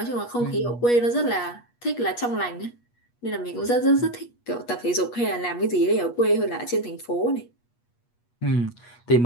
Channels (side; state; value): right; late; 8.3 ms